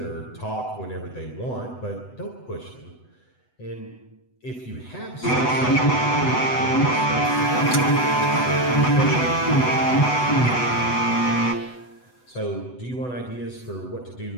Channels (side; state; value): right; late; 8.0 ms